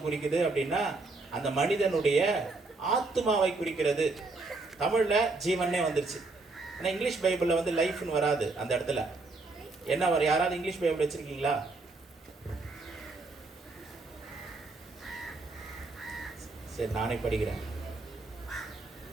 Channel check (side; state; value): left; quieter; 3.5 dB